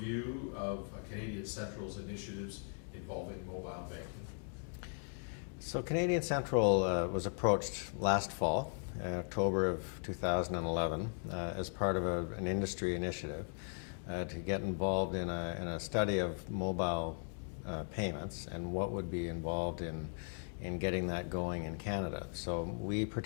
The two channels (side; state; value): right; silent; 52 dB below the other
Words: of Canadian Central's initiatives involving mobile banking? So Canadian Central was approached last fall, October of 2011, as part of an industry initiative to get involved in a study of mobile payments and what would be involved in getting that going in Canada. So we